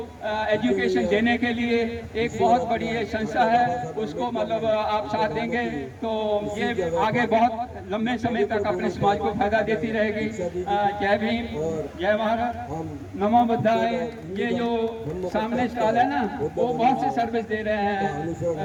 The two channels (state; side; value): identical; both; correlation 1.00